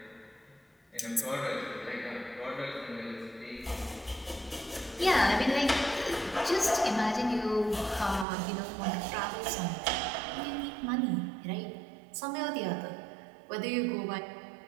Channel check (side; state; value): left; drops out; at 8.2 s